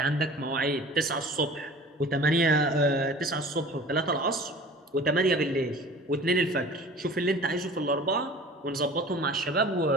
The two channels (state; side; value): normal; both; correlation 0.42